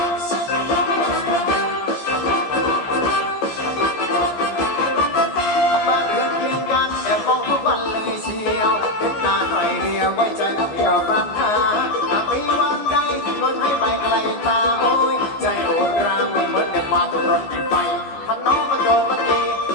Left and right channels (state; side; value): late; right; 14 ms